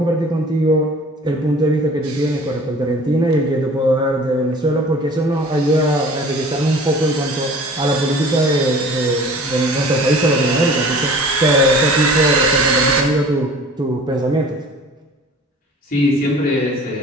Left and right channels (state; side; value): normal; both; correlation 0.46